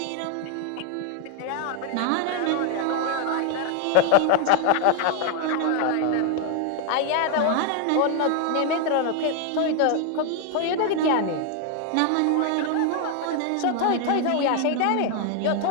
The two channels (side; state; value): both; different; correlation 0.00